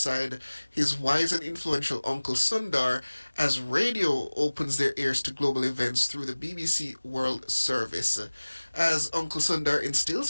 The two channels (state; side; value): inverted; both; correlation -1.00